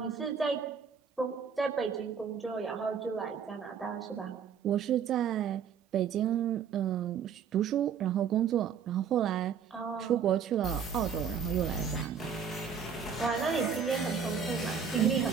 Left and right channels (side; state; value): left; quieter; 7.1 dB